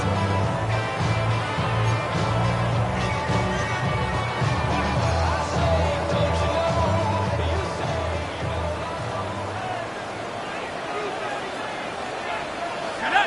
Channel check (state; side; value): identical; both; correlation 1.00